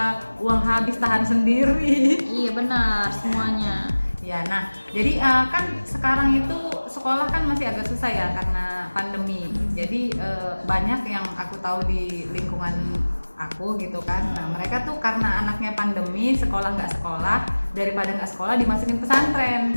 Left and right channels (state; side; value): inverted; both; correlation -1.00